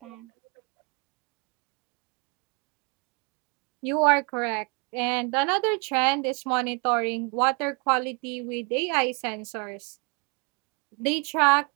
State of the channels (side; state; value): left; quieter; 33.2 dB